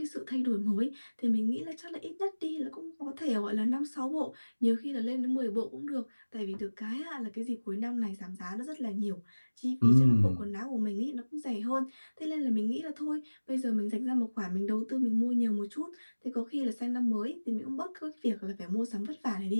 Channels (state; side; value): inverted; both; correlation -1.00